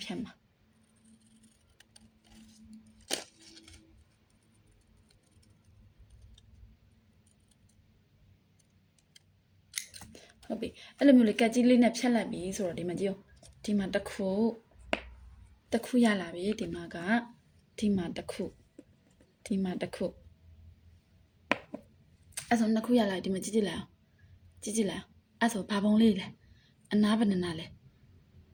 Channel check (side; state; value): both; identical; correlation 1.00